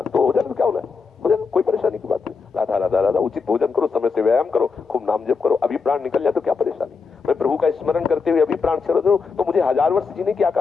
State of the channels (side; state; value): right; quieter; 5.0 dB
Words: तो हो जाए तो क्या होना है? हो जाए, कोई परेशानी की बात नहीं। राधा राधा राधा, उचित भोजन करो, समय से व्यायाम करो, खूब नाम जप करो, अभी प्राण निकल जाए तो क्या परेशानी? मैं प्रभु का स्मरण करते हुए अभी प्राण छोड़ दूं तो मुझे 1000 वर्ष जीने की